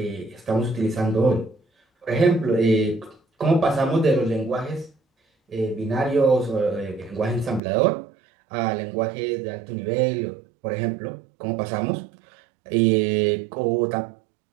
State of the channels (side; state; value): left; drops out; at 7.6 s